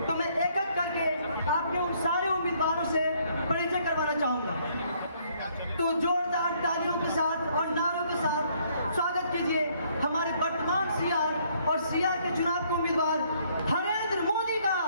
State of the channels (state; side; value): inverted; both; correlation -0.66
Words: तो मैं एक एक करके आपके उन सारे उम्मीदवारों से परिचय करवाना चाहूंगा। तो जोरदार तालियों के साथ और नारों के साथ स्वागत कीजिए हमारे वर्तमान सीआर और सीआर के चुनाव के उम्मीदवार नरेंद्र मोदी का।